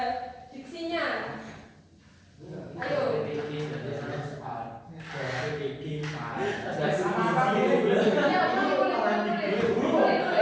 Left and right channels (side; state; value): both; identical; correlation 1.00